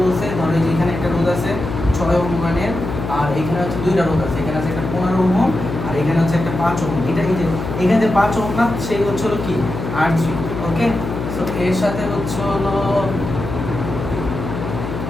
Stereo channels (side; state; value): left; noise; hum, 6 dB below the sound